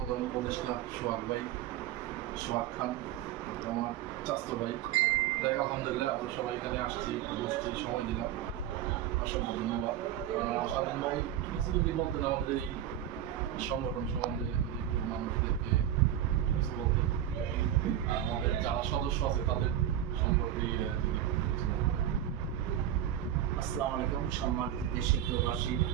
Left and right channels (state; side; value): quieter; left; 11.3 dB